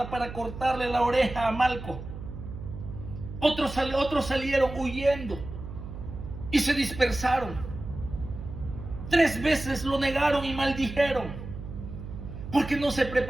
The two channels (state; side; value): noise; right; hum, 10 dB below the sound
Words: para cortarle la oreja a Malco. Otros salieron huyendo y se dispersaron. 3 veces lo negaron y maldijeron, porque no se